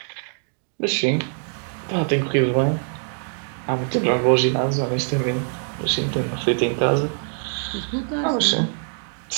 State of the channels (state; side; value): silent; left; 58 dB below the other